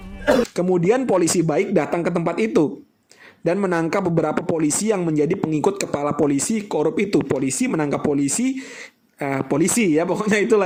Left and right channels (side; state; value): both; identical; correlation 1.00